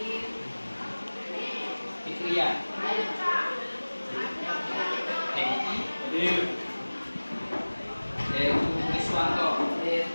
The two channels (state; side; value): inverted; both; correlation -1.00